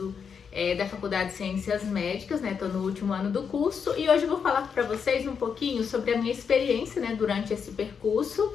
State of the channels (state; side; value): quieter; right; 6.5 dB